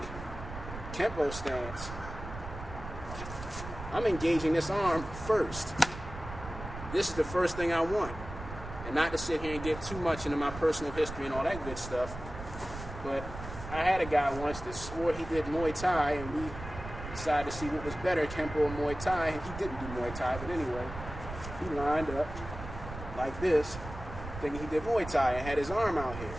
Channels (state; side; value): noise; right; rumble, 10 dB below the sound